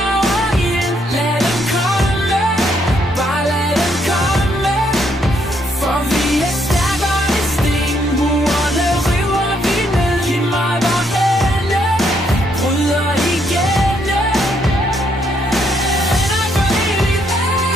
over ild. Lad dem komme, bare lad dem komme. For vi er stærkere end sten. Murene river vi ned. Giv mig vor hænde, bryder igennem. Venner for evigt,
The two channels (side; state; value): both; normal; correlation 0.73